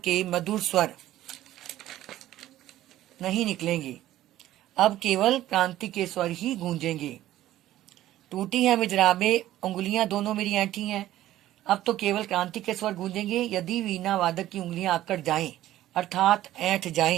मधुर स्वर नहीं निकलेंगे, अब केवल क्रांति के स्वर ही गूंजेंगे। टूटी है मिजराबे, उंगलियां दोनों मेरी ऐंठी हैं। अब तो केवल क्रांति के स्वर गूंजेंगे। यदि वीणा वादक की उंगलियां आकड़ जाएं, अर्थात ऐंठ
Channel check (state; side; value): quieter; left; 14.1 dB